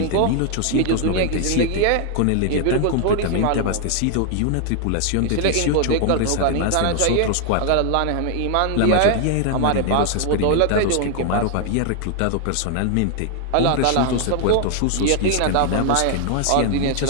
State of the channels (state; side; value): different; both; correlation 0.00